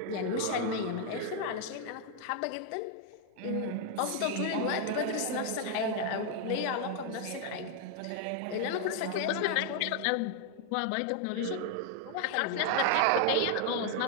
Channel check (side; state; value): both; different; correlation 0.00